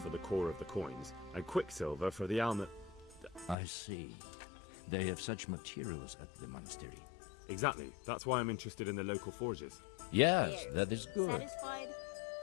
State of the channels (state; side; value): drops out; right; at 3.6 s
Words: the core of the coins and quicksilver for the almond. I see. They have such materials at the monastery. Exactly. That's why I'm interested in the local forges. Yes, that is good. Satisfied?